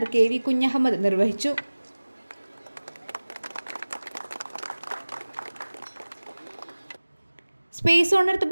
KV Kunhahammed നിർവഹിച്ചു. സ്പേസ് ഓൺ എർത്ത്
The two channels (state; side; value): inverted; both; correlation -1.00